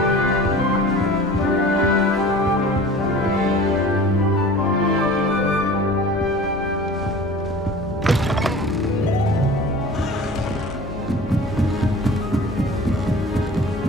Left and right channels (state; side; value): normal; both; correlation 0.41